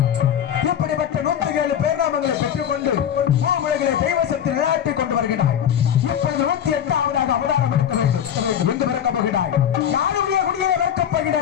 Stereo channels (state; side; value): quieter; right; 9.4 dB